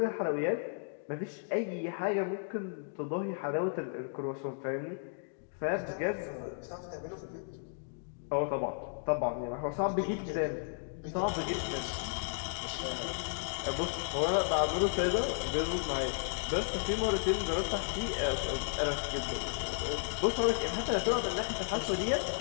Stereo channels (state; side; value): silent; right; digital silence